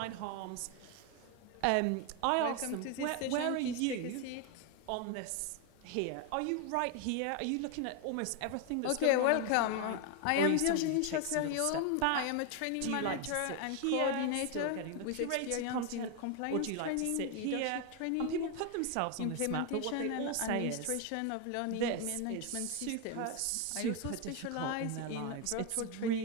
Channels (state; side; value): different; both; correlation 0.01